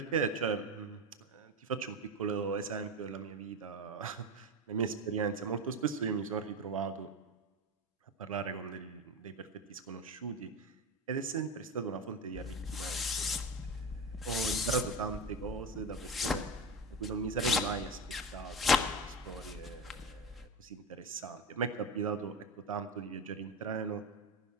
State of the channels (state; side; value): normal; both; correlation 0.22